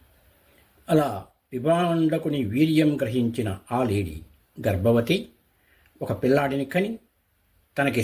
అలా విభాండకుని వీర్యం గ్రహించిన ఆ లేడీ గర్భవతి, ఒక పిల్లాడిని కని తనకి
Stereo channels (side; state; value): both; identical; correlation 1.00